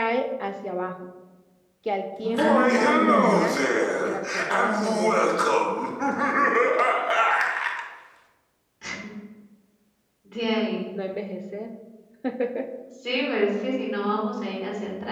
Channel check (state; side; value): identical; both; correlation 1.00